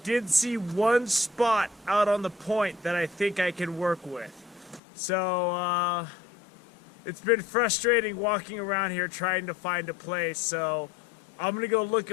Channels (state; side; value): drops out; right; at 4.8 s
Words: see one spot out on the point that I think I can work with. So it's been frustrating walking around here trying to find a place, so I'm gonna go look